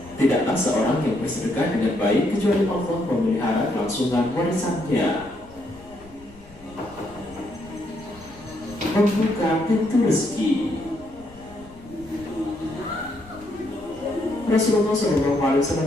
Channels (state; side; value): noise; left; rumble, 22 dB below the sound